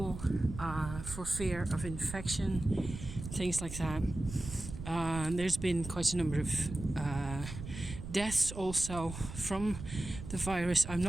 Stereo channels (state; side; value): noise; right; rumble, 10 dB below the sound